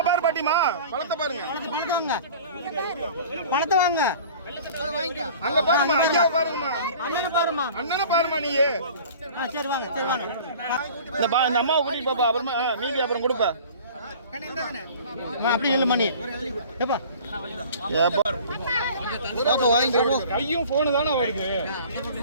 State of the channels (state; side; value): inverted; both; correlation -0.44